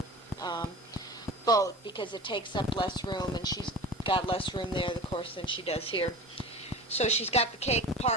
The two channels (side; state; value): both; normal; correlation 0.34